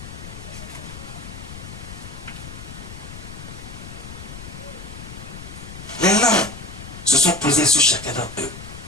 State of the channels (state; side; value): noise; left; rumble, 12 dB below the sound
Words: Les langues se sont posés sur chacun d'entre eux.